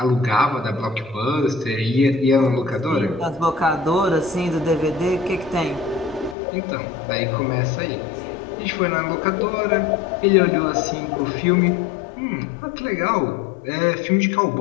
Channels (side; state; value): right; drops out; at 6.4 s